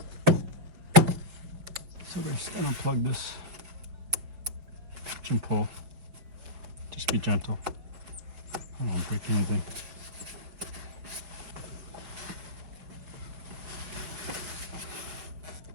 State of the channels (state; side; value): late; left; 5.7 ms